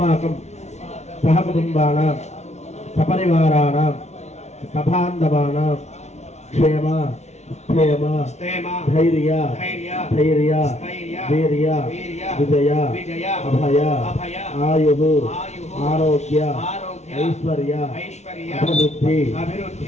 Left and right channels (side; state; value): right; late; 0.32 ms